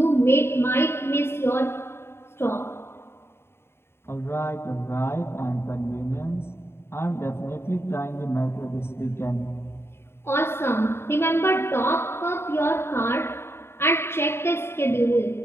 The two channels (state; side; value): late; right; 0.12 ms